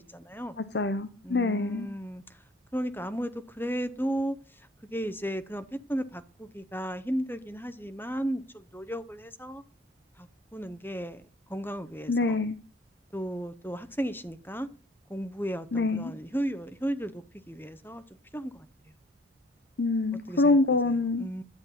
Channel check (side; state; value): both; normal; correlation 0.55